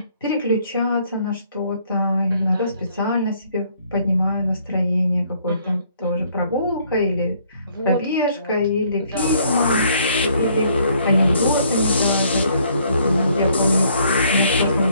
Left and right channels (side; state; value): both; inverted; correlation -0.65